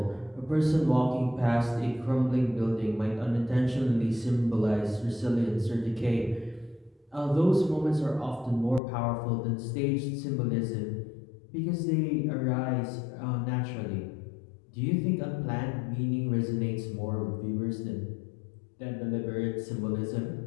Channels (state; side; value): drops out; right; at 8.8 s